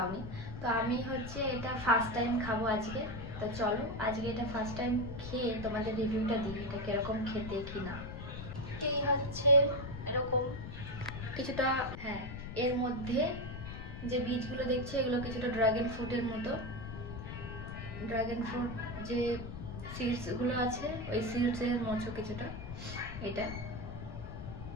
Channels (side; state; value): left; noise; rumble, 8 dB below the sound